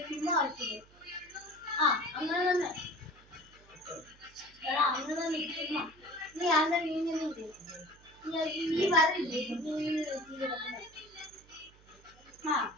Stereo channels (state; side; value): noise; right; hum, 26 dB below the sound